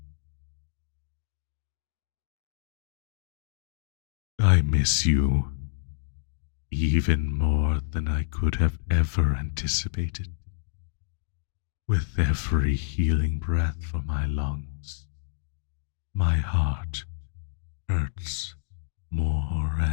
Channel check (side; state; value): right; silent; digital silence